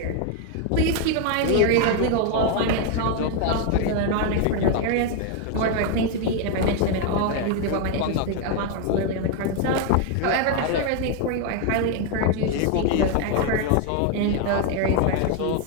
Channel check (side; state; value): both; different; correlation 0.01